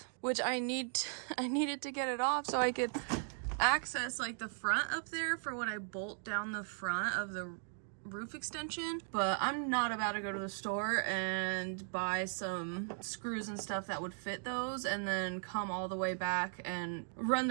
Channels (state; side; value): silent; left; 53 dB below the other